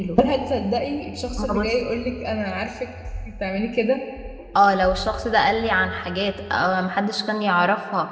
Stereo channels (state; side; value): identical; both; correlation 1.00